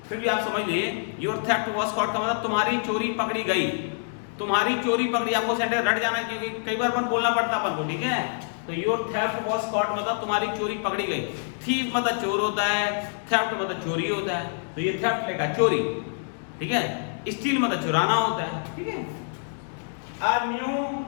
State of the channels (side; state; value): right; silent; digital silence